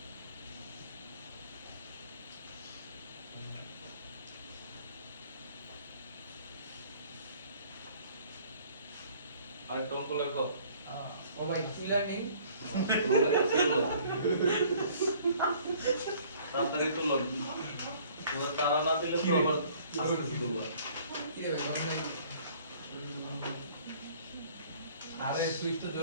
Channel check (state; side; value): inverted; both; correlation -0.55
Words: আরেকটা অঙ্ক লেখো। ও ভাই ক্লিয়ার নেই তাড়াতাড়ি তুলো, তারা না দিলে তো আবার আস্তে তুলবা। কি রে ভাই বন্ধ আরে সুইচটা